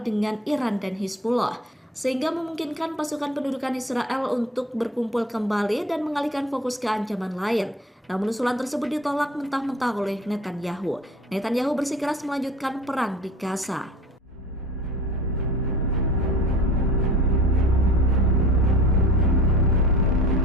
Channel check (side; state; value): both; normal; correlation 0.43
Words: dengan Iran dan Hizbullah, sehingga memungkinkan pasukan pendudukan Israel untuk berkumpul kembali dan mengalihkan fokus ke ancaman lain. Namun usulan tersebut ditolak mentah-mentah oleh Netanyahu. Netanyahu bersikeras melanjutkan perang di Gaza.